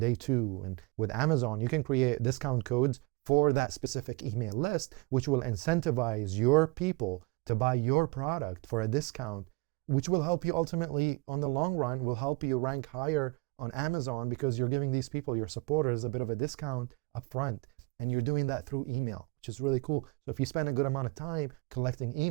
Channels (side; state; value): left; quieter; 27.1 dB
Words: 2. And with Amazon, you can create discount codes for that specific email list, which will incentivize your people to buy your product for a discount, which will help you ultimately, on the long run, will help you rank higher on Amazon because you're giving these people, your supporters, a bit of a discount up front. And you're doing that through email, which is really cool. So if you spend a good amount of time collecting